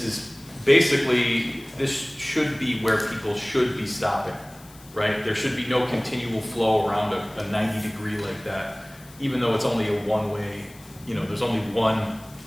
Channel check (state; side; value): noise; left; hiss, 23 dB below the sound